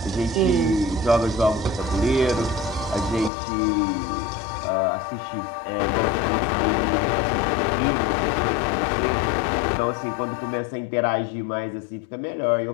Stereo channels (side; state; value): right; drops out; at 3.3 s